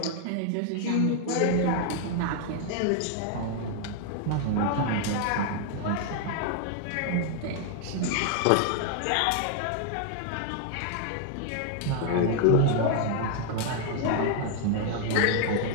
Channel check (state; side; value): different; both; correlation 0.00